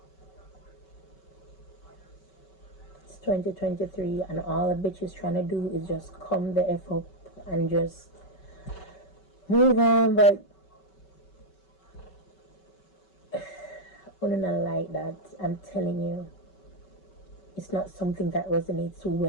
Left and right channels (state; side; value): late; right; 5.3 ms